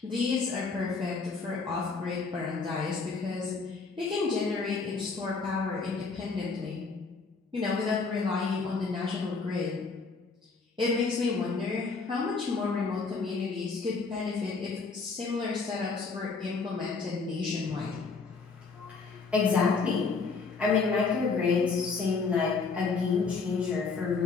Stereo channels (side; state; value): right; quieter; 4.6 dB